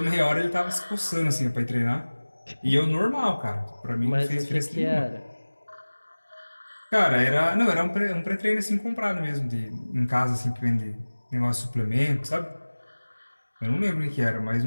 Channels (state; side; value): inverted; both; correlation -1.00